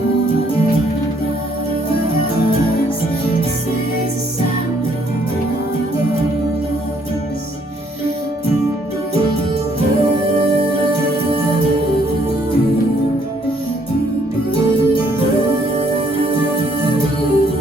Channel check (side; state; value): both; normal; correlation 0.66